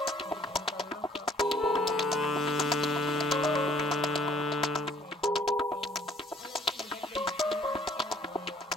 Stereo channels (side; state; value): both; normal; correlation 0.60